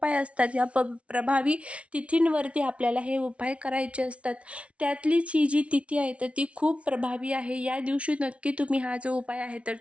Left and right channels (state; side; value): late; left; 0.062 ms